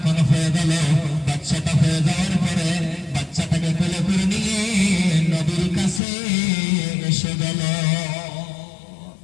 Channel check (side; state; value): right; drops out; at 6.0 s